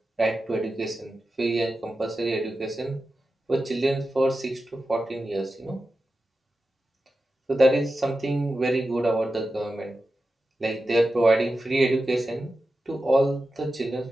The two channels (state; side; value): normal; both; correlation 0.92